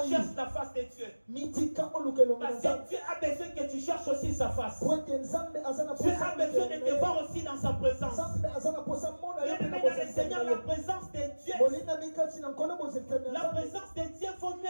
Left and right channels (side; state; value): both; inverted; correlation -1.00